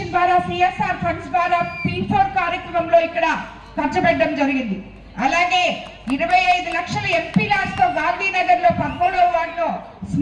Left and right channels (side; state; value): both; identical; correlation 1.00